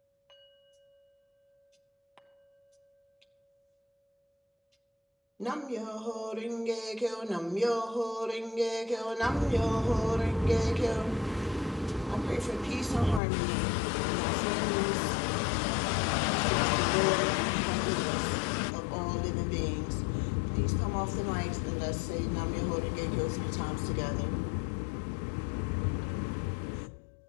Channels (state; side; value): drops out; right; at 13.2 s